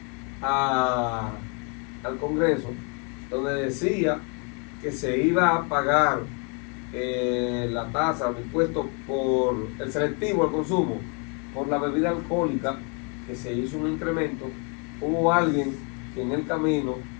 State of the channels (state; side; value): quieter; right; 36.2 dB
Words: al Congreso, donde decía que se iba a pagar la tasa, el impuesto por el selectivo al consumo, por la bebida alcohólica, que se hizo un incremento, hubo alguien que en el camino